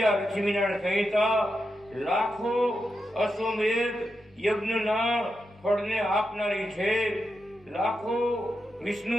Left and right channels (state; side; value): normal; both; correlation 0.87